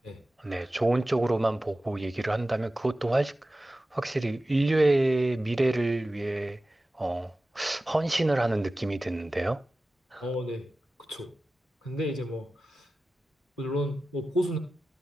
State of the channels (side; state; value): both; normal; correlation 0.95